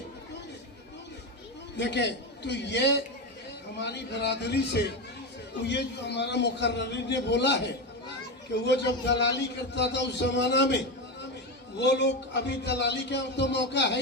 देखें, तो ये हमारी बरादरी से तो ये जो हमारा मुकर्ररी ने बोला है कि वो जब दलाली करता था उस जमाना में, वो लोग अभी दलाली का तो मौका है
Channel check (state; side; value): normal; both; correlation 0.16